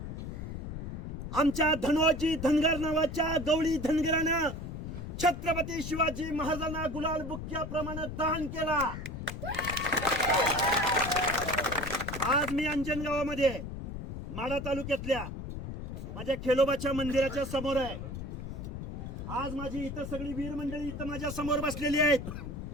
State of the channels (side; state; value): left; noise; rumble, 7 dB below the sound